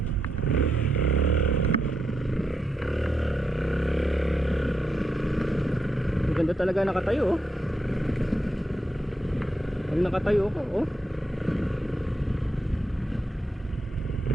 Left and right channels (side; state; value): both; normal; correlation 0.82